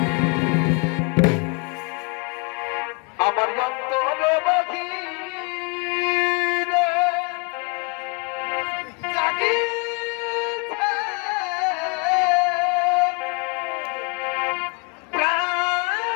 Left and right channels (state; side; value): quieter; right; 32.7 dB